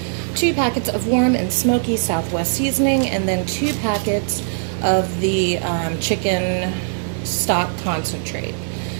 2 packets of warm and smoky Southwest seasoning, and then 2 packets of the chicken stock concentrate.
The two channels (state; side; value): silent; left; digital silence